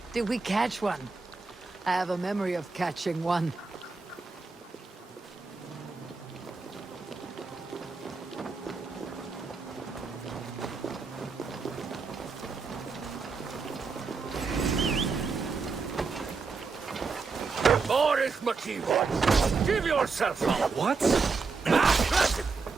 Did we catch one? I have a memory of catching one. Boris McKeever, give yourself up! What?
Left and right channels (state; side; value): quieter; left; 4.6 dB